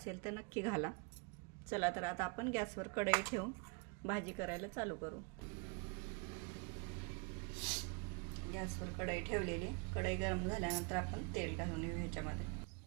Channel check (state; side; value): quieter; left; 32.6 dB